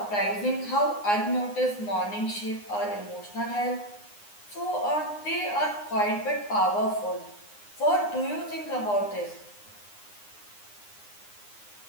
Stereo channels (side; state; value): right; late; 9.7 ms